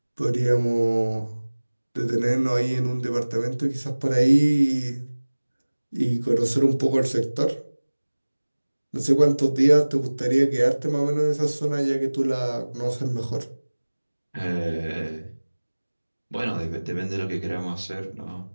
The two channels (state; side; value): inverted; both; correlation -1.00